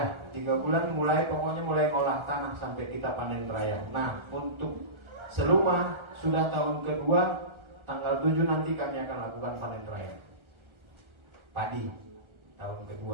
3 bulan pokoknya mulai ngolah tanah sampai kita panen raya. Nah, untuk Seluma sudah tahun kedua, tanggal 7 nanti kami akan lakukan panen raya padi tahun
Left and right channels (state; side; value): late; left; 1.3 ms